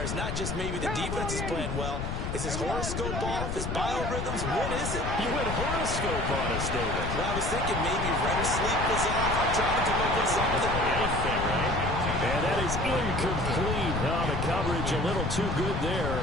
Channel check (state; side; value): noise; left; rumble, 3 dB below the sound